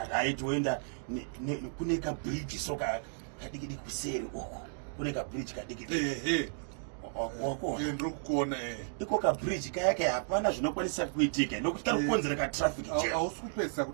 right woenda kune kabridge soka kadikidi kuseri uko kune kabridge kadikidi ndikuona iko kabridge kayake hapana zvinokwanisa kuitika nokuti kari kukonzera katraffic jam. Hausi kupedzisa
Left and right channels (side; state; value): left; silent; digital silence